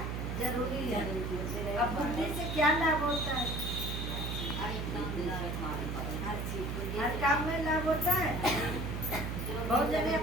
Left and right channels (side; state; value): right; noise; hum, 3 dB below the sound